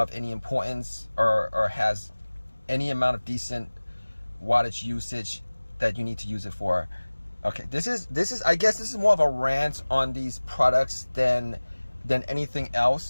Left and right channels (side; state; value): both; inverted; correlation -1.00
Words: any importance or has any amount of decent wattage usage that you need to use it for. Okay, this is I guess this is more of a rant on these products than anything